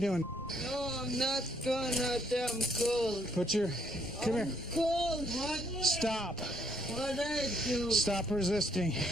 No, I'm not going out there. I'm cold. Put your... Come here. Cold. What? Stop. What I do? Stop resisting.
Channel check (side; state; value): both; normal; correlation 0.69